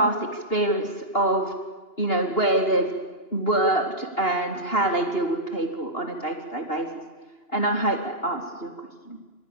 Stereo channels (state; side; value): late; right; 2.8 ms